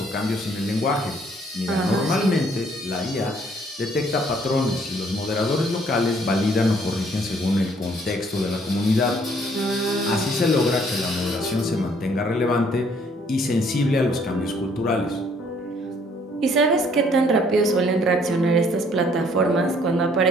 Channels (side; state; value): both; normal; correlation 0.63